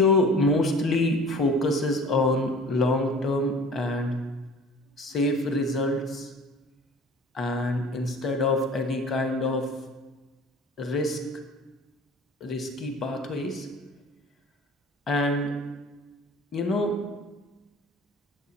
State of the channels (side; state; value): both; normal; correlation 0.44